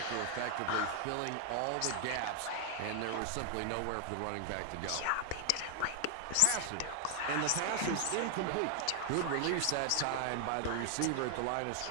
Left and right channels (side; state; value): both; different; correlation 0.00